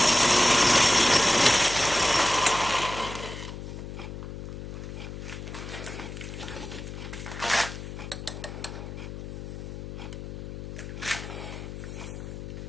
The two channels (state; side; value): noise; left; hum, 9 dB below the sound